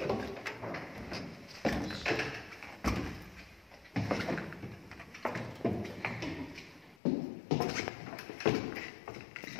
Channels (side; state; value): right; drops out; at 7.0 s